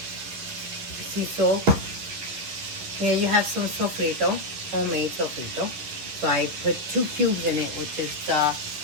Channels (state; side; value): late; left; 11 ms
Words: Sea salt. Here you have some sofrito, homemade sofrito. So I put 2 cubes in it, which is